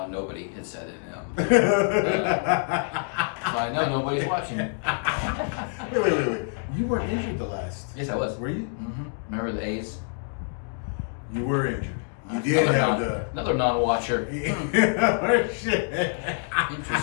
had said it. I know nobody's watching. Wait. You weren't injured the last. Yes, I was. Were you? Mm-hmm. Remember the A's? You were injured. You did have another non-watcher. Shit.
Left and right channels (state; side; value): silent; right; 61 dB below the other